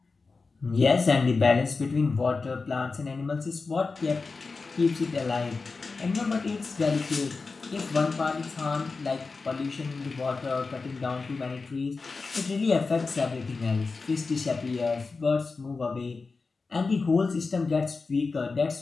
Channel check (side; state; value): right; quieter; 4.2 dB